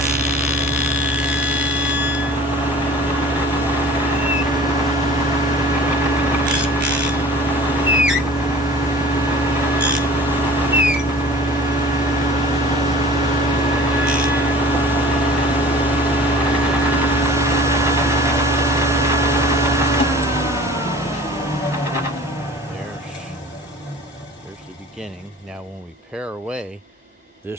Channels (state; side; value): normal; both; correlation 0.44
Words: Now when we pare away